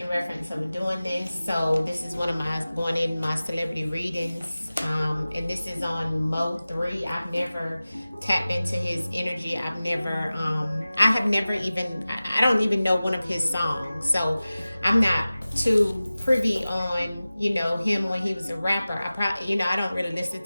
reference of doing this. So this is one of my going in my celebrity readings. And this is on Mo3. I've never tapped into his energy. I have never even, I don't even know one of his songs. So I'm not too privy on him when he was a rapper. I probably I don't really listen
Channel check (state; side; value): inverted; both; correlation -0.97